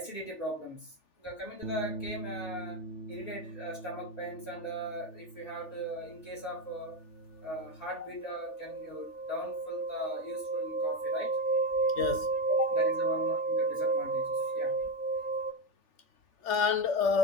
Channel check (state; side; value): late; right; 3.4 ms